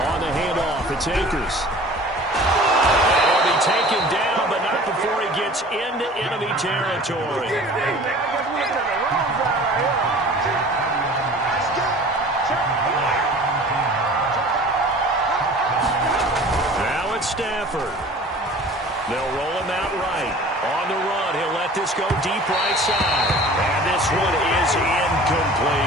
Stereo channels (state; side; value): normal; both; correlation 0.44